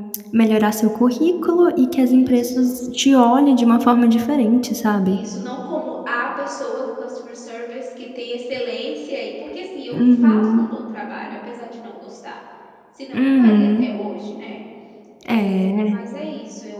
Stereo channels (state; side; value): identical; both; correlation 1.00